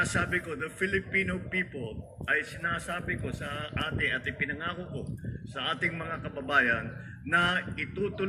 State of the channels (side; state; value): both; identical; correlation 1.00